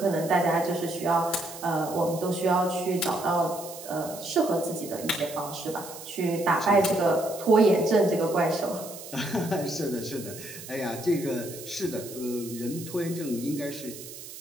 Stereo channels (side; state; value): right; noise; hiss, 13 dB below the sound